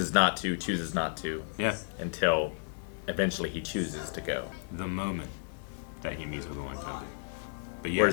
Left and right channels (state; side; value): silent; right; 56 dB below the other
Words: not to. Yeah. Until eventually he chooses to go. The moment that he meets with Owen Kenobi. But yeah,